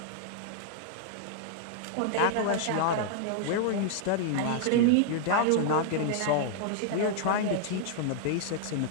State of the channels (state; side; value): different; both; correlation 0.00